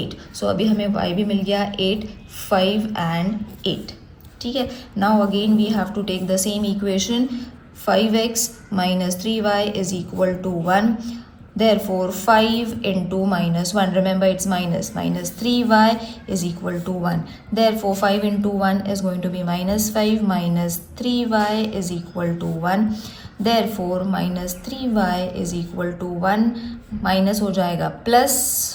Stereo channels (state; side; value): identical; both; correlation 1.00